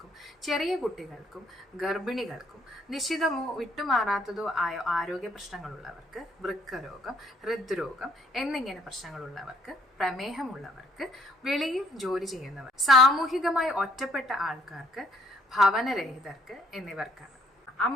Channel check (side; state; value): both; normal; correlation 0.64